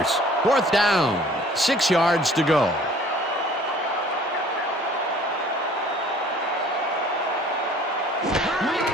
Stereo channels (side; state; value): both; normal; correlation 0.52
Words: Fourth down, 6 yards to go.